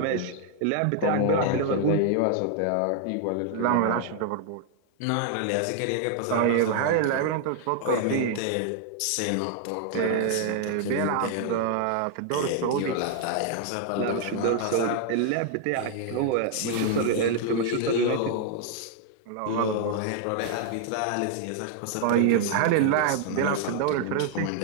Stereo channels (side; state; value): both; different; correlation 0.00